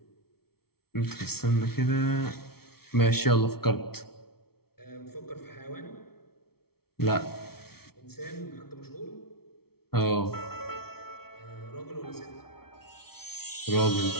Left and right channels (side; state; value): right; late; 0.95 ms